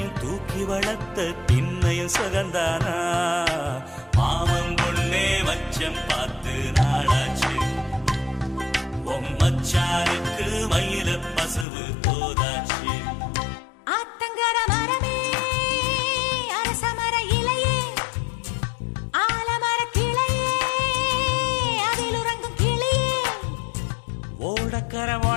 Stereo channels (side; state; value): right; drops out; at 11.7 s